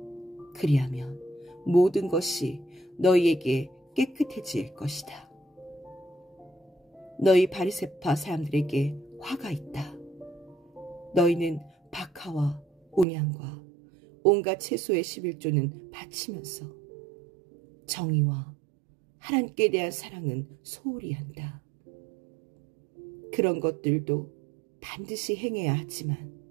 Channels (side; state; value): left; drops out; at 13.1 s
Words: 그리하면 모든 것이 너희에게 깨끗해질 것이다. 너희 바리새파 사람들에게 화가 있다. 너희는 박하와 온향과 온갖 채소의 11조는 바치면서 정의와 하나님께 대한 사랑은 소홀히 한다. 그런 것들도 반드시 행해야 하지만